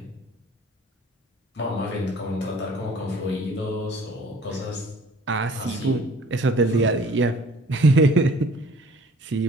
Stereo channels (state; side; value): normal; both; correlation 0.51